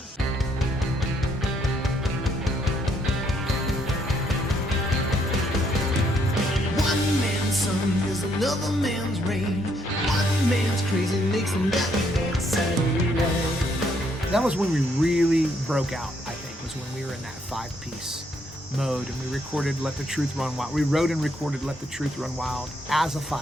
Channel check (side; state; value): both; normal; correlation 0.71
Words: One man's sun is another man's rain. One man's crazy makes another man's Saturday night. That was when we really broke out, I think, was when we were in that 5-piece mode, and we recorded Let the Truth Run Wild. We wrote and recorded Let the Truth Run Wild as a